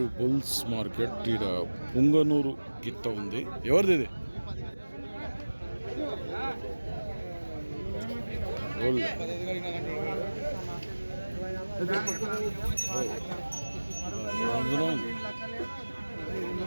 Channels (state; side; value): inverted; both; correlation -1.00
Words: bulls market. ఈడ పుంగనూరు గిత్త ఉంది. ఎవరిది ఇది?